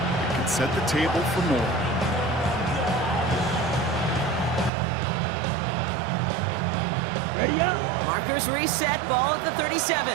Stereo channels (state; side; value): drops out; left; at 4.7 s